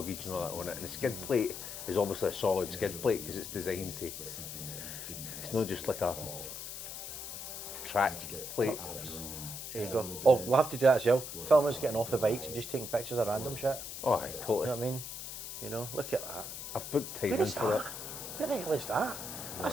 and all that on it, and the skid plate is obviously a solid skid plate because it's designed to. It's not just like a track plate. There you go. Oh, we'll have to do that as well. Film us getting off the bikes and just taking pictures of random shit. Oh, aye, You know totally. what I mean? You know, look at that. I've booked time Where in is for that? that. Where the hell is that?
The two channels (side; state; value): left; noise; hiss, 8 dB below the sound